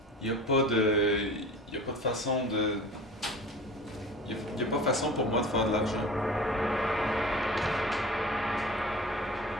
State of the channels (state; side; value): normal; both; correlation 0.38